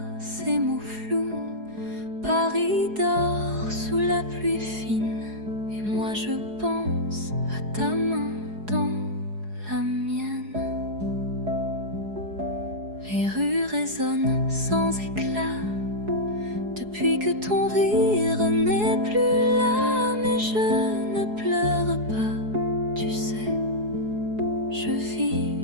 ces mots flous. Paris dort sous la pluie fine, et moi je pense à ta main dans la mienne. Les rues résonnent sans éclat, depuis que ton rire n'est plus là. Mais je ne pleure pas, tu sais. Je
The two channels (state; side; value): late; left; 4.8 ms